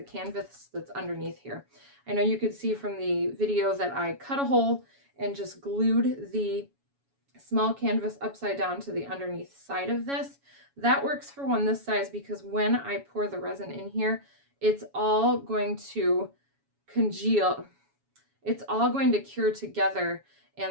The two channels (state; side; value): late; left; 7.2 ms